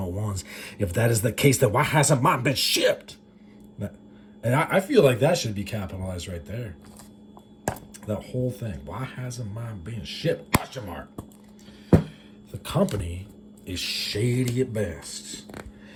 If that is the case, then why hasn't mine been shipped? And I feel like that should be capitalized right there. That whole thing. Why hasn't mine been shipped? Question mark. The company is shady at best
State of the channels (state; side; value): identical; both; correlation 1.00